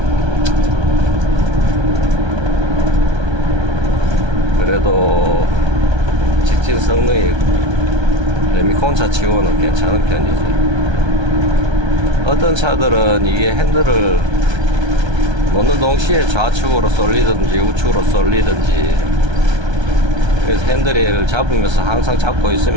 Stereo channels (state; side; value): late; left; 1.3 ms